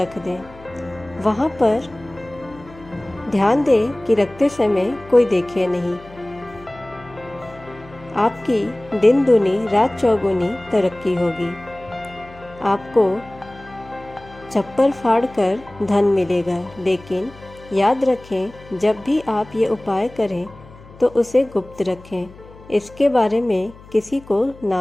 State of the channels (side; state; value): left; noise; hum, 21 dB below the sound